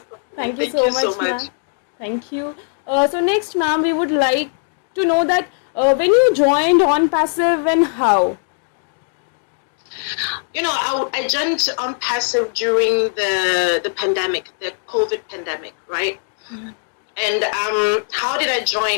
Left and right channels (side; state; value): right; silent; digital silence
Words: compliment. Thank you so much, ma'am. Thank you. So next, ma'am, we would like to know that when you joined ONPASSIVE and how. You know, I joined ONPASSIVE during the pandemic, the COVID pandemic, right? Mm-hmm. And how did I